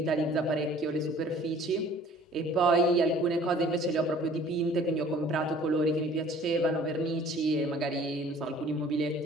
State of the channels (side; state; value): both; normal; correlation 0.52